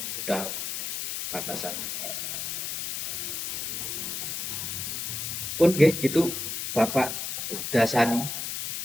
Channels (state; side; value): noise; left; hiss, 4 dB below the sound